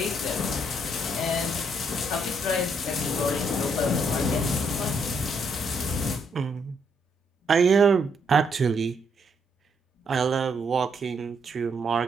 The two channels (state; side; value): normal; both; correlation 0.73